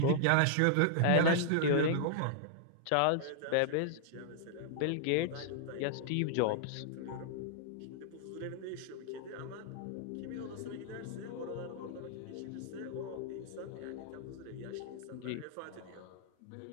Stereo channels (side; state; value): both; different; correlation -0.01